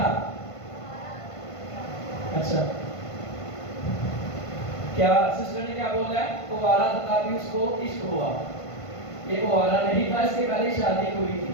اچھا کیا سسٹر نے کیا بولا ہے؟ گوارا تھا بھی اس کو عشق ہوا. یہ گوارا نہیں تھا, اس کے پہلے شادی ہوئی تھی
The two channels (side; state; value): right; late; 1.5 ms